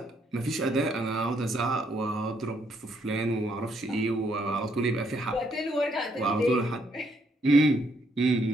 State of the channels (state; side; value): normal; both; correlation 0.72